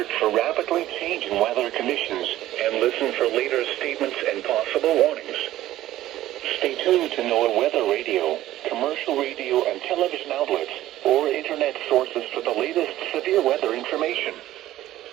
for rapidly changing weather conditions and listen for later statements and possible warnings. Stay tuned to NOAA weather radio, commercial radio and television outlets, or internet sources for the latest severe weather information.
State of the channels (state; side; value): quieter; left; 14.3 dB